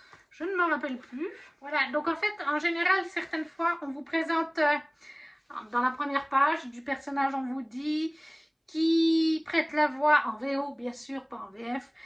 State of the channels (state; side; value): identical; both; correlation 1.00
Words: Je ne me rappelle plus. Voilà, donc en fait, en général, certaines fois, on vous présente dans la première page du personnage, on vous dit qui prête la voix en VO, bien sûr, pas en VF.